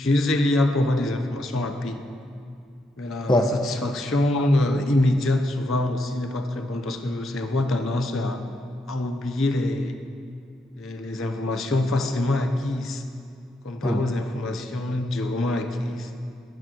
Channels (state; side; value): normal; both; correlation 0.79